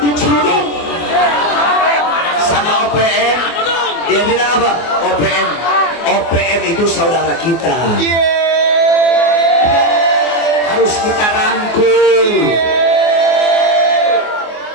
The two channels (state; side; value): late; right; 24 ms